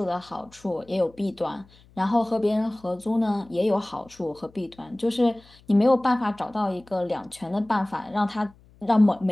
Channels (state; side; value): noise; left; hum, 27 dB below the sound